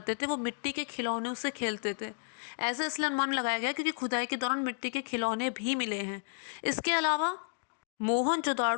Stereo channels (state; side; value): silent; right; digital silence